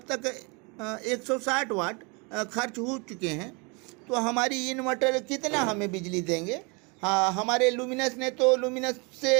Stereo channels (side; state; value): left; quieter; 30.6 dB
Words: तक 160 वाट खर्च हो चुके हैं। तो हमारी इन्वर्टर कितना हमें बिजली देंगे? हाँ, हमारे लुमिनस ने तो लुमिनस